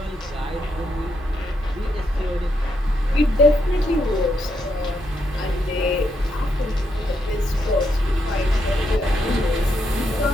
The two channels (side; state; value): both; normal; correlation 0.79